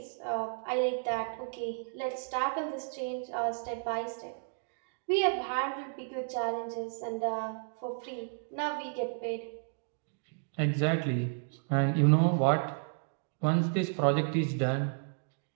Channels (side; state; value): left; silent; digital silence